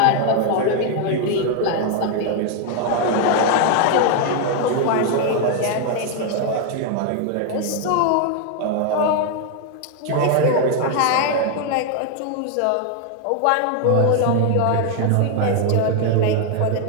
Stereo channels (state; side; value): different; both; correlation 0.00